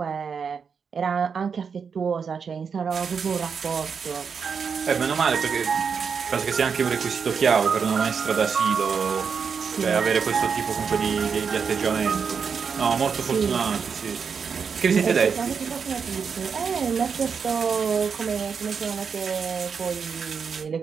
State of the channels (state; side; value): quieter; left; 6.2 dB